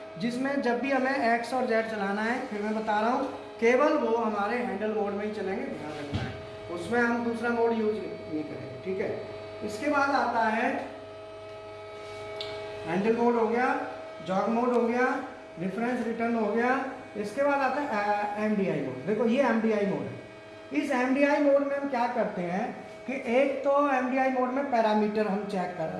जिसमें जब भी हमें एक्स और जेड चलाना है, फिर मैं बता रहा हूँ केवल वो हमारे हैंडल मोड में ही चलेंगे, ध्यान रखना है, उसमें हम दूसरा मोड यूज नहीं करेंगे, ठीक है। इसके बाद आता है हैंडल मोड हो गया, जॉग मोड हो गया, रेफरेंस रिटर्न हो गया। इसके बाद आता है MDI मोड। देखो ये MDI मोड है। इस MDI मोड में हम क्या करते हैं कि एक तो MDI मोड में पैरामीटर हम सेट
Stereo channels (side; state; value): both; identical; correlation 1.00